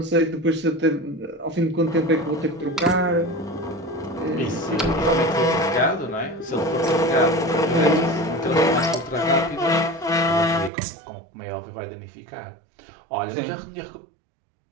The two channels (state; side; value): drops out; left; at 10.7 s